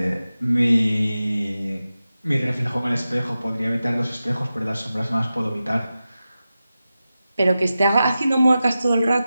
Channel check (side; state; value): both; inverted; correlation -0.93